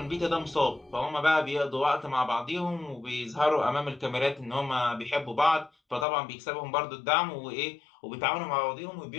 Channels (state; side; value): drops out; right; at 6.1 s